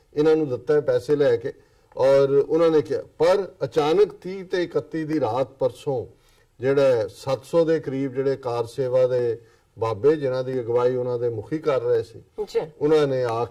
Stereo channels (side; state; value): both; identical; correlation 1.00